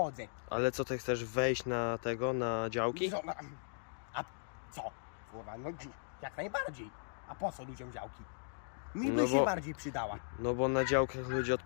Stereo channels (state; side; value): silent; right; digital silence